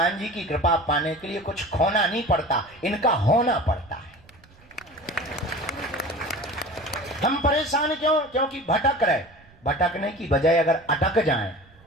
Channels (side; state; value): right; noise; rumble, 27 dB below the sound